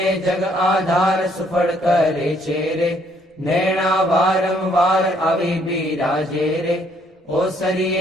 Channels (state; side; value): normal; both; correlation 0.67